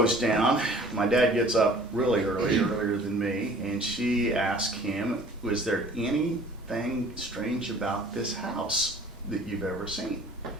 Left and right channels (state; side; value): normal; both; correlation 0.49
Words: down. My dad gets up really early, earlier than me, and she asked him, "Was there anything strange about this house that you've ever seen?"